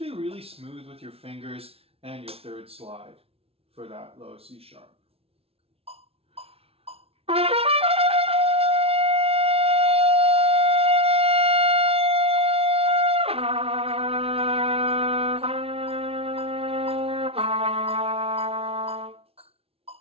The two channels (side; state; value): left; late; 0.28 ms